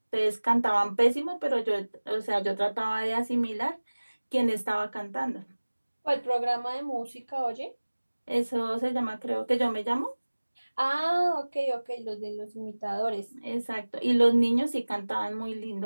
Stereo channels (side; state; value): both; inverted; correlation -1.00